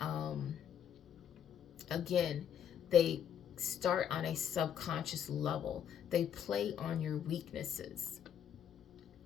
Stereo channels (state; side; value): quieter; right; 9.0 dB